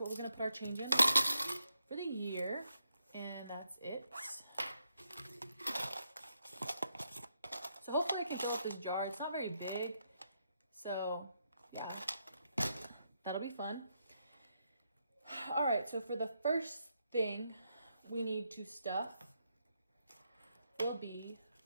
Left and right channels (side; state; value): both; inverted; correlation -0.81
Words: what we're going to put our change in for the year, and that's it. So hopefully I can fill up this jar. It's not very big, so yeah, that'll be fun. All right, so for the first thing we need to stuff will be